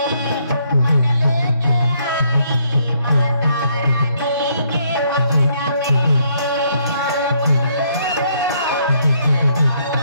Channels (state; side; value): inverted; both; correlation -0.70